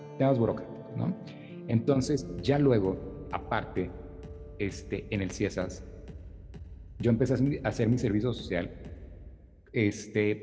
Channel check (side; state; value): both; identical; correlation 1.00